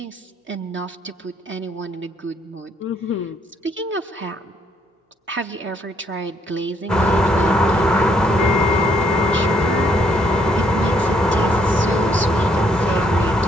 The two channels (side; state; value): both; normal; correlation 0.70